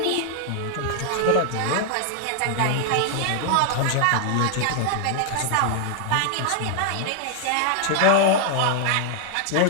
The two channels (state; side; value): different; both; correlation 0.00